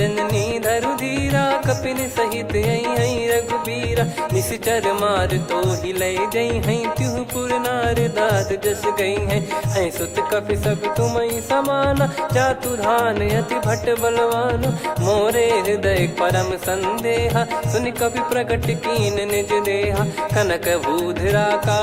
धरु धीरा, कपिन सहित यही रघुबीरा। निश्चर मार तो ही ले जई हैं, त्युह पुर नार दाद जस गई हैं। सुत कपि सब तुमहि समाना, जातु धान अति भट बलवान। मोरे हृदय परम संदेहा, सुनि कपि प्रकट कीन निज देहा। कनक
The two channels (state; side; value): identical; both; correlation 1.00